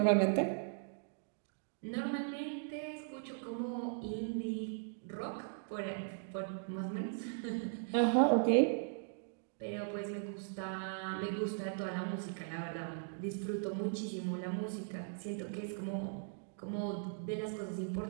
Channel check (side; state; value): left; silent; digital silence